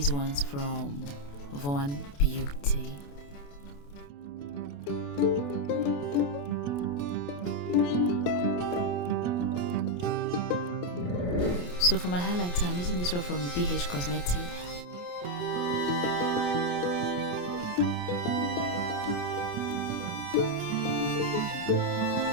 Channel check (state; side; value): late; right; 28 ms